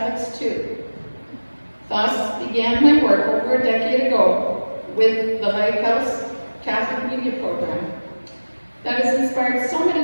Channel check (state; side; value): inverted; both; correlation -1.00